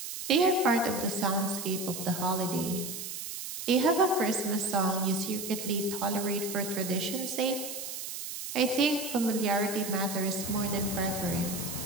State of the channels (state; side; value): noise; right; hiss, 7 dB below the sound